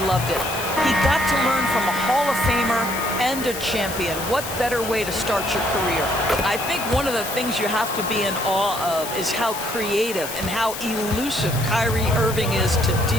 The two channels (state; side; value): noise; left; hiss, 9 dB below the sound